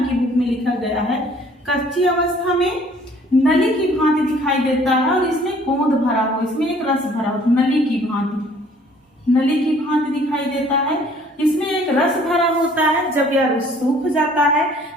की बुक में लिखा गया है। कच्ची अवस्था में नली की भांति दिखाई देता है और इसमें गोंद भरा हो, इसमें एक रस भरा हो, नली की भांति, नली की भांति दिखाई देता है। इसमें एक रस भरा होता है। जब यह रस सूख जाता है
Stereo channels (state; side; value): normal; both; correlation 0.57